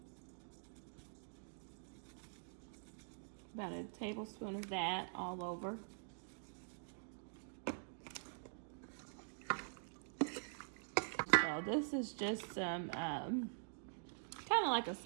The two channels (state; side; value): silent; left; digital silence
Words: About a tablespoon of that all over. So this is just some kind of like a